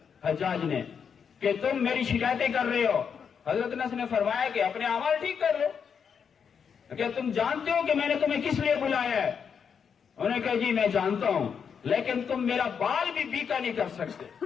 حجاج نے کہ تم میری شکایتیں کر رہے ہو۔ حضرت انس نے فرمایا کہ اپنے اعمال ٹھیک کر لو، کہ تم جانتے ہو کہ میں نے تمہیں کس لیے بلایا ہے؟ انہوں نے کہا جی میں جانتا ہوں، لیکن تم میرا بال بھی بیکا نہیں کر سکتے.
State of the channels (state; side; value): quieter; right; 6.9 dB